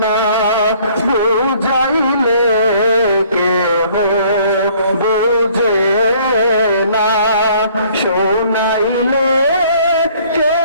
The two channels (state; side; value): inverted; both; correlation -0.58